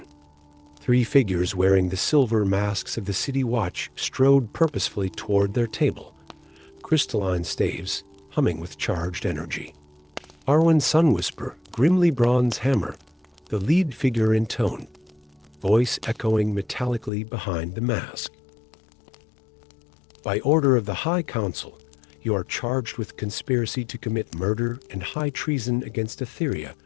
3 figures wearing the silver masks of the city watch strode purposefully toward their table, crystalline staves humming with charged energy. Arwen Sunwhisper, Grimly bronze hammer, the lead figure intoned, voice echoing metallically behind the mask. "By order of the High Council, you are charged with conspiracy to commit murder and high treason against Aetheria."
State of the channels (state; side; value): drops out; right; at 17.1 s